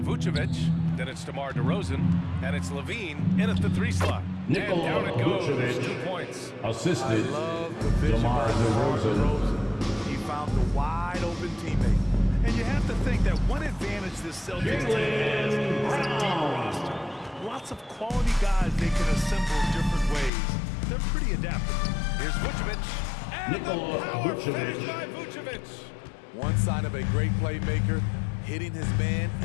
Vucevic. Then it's DeMar DeRozan. And it's Levine in at the 3 slot. Nikola and down it goes. Vucevic. 2 points. Assisted. I love the vision DeMar by DeRozan. He found the wide open teammate. And you have to think that one advantage this Celtics team has is a deep roster. Lots of quality guys they can assemble different ways. They're pretty adaptable. Here's Vucevic. And Nikola the power Vucevic. finish by Vucevic. One sign of a great playmaker, hitting his man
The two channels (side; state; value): right; drops out; at 20.3 s